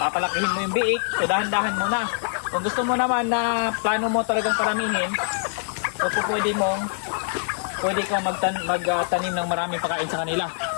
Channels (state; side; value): silent; right; digital silence